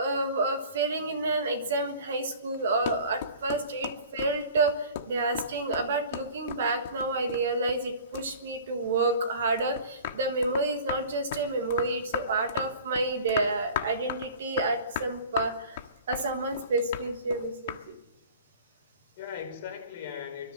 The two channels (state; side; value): inverted; both; correlation -0.44